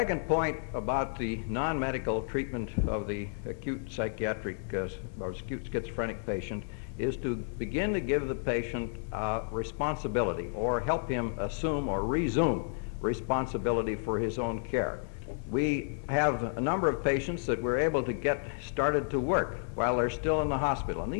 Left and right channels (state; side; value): silent; right; digital silence